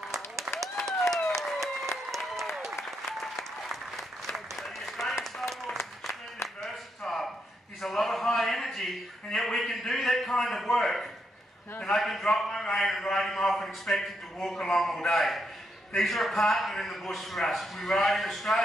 He's a lot of high energy, and yet we can do that kind of work. And I can drop my rein and ride him off and expect him to walk along all day. These are a partner in the bush for us. We ride in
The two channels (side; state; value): both; normal; correlation 0.80